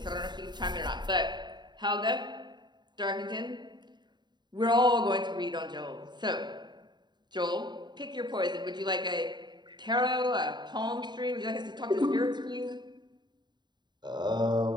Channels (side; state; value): left; late; 0.21 ms